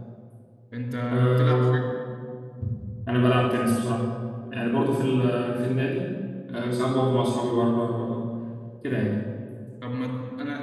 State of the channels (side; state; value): both; identical; correlation 1.00